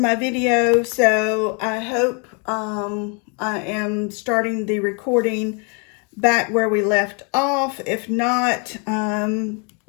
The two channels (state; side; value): quieter; right; 35.8 dB